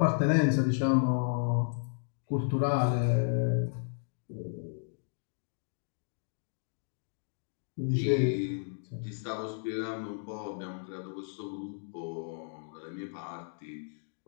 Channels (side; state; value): right; silent; digital silence